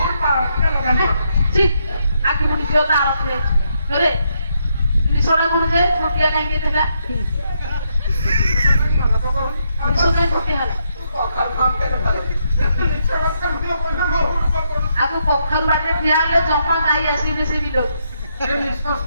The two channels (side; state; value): both; inverted; correlation -0.78